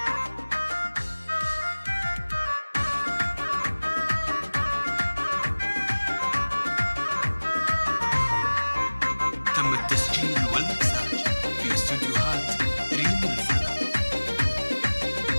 تم التسجيل والمكساج في استوديوهات ريم الفن.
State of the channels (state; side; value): inverted; both; correlation -1.00